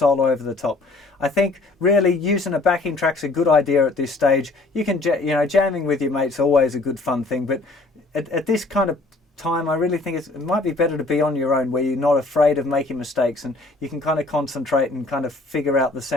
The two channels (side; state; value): right; quieter; 3.2 dB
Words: over the top. I think really using a backing track's a good idea at this stage. You can, jamming with your mates always a good fun thing, but at this kind of time, I really think it might be better to be on your own, where you're not afraid of making mistakes and you can kind of concentrate and kind of figure out the